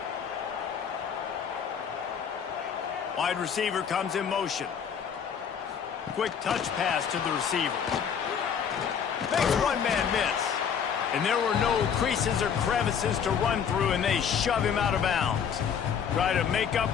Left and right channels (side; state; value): right; quieter; 7.5 dB